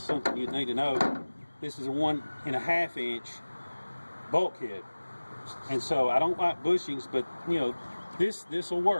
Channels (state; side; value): inverted; both; correlation -1.00